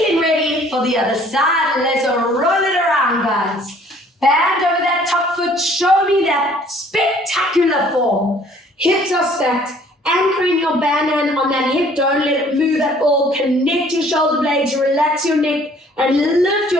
ready for the other side. Let's roll it around, guys. Band over that top foot. Show me that spectacular form. Hips are stacked. Anchoring your band hand on that hip. Don't let it move at all. Connect your shoulder blades. Relax your neck. And lift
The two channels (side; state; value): both; normal; correlation 0.57